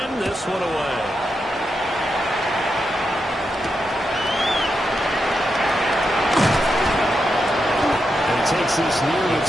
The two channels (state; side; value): normal; both; correlation 0.86